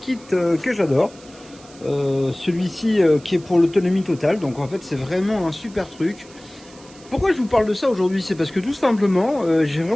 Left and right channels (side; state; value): right; noise; hiss, 23 dB below the sound